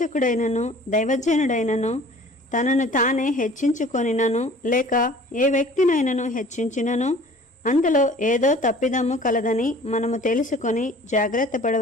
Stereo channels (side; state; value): both; normal; correlation 0.48